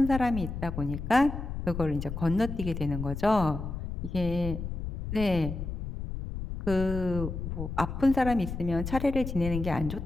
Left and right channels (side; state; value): left; noise; rumble, 6 dB below the sound